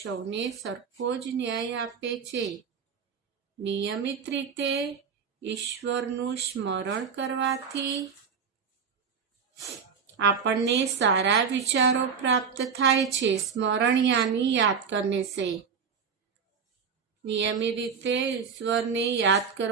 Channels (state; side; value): quieter; left; 6.3 dB